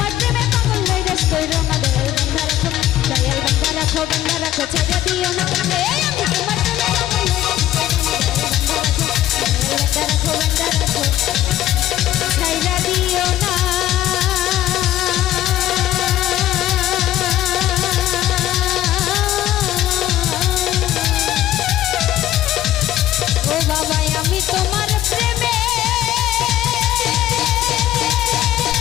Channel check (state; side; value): quieter; right; 13.3 dB